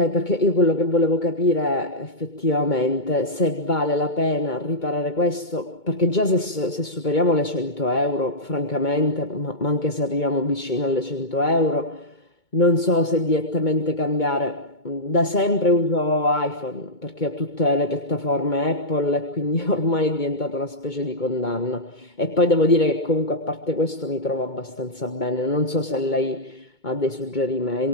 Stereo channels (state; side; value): late; right; 2.2 ms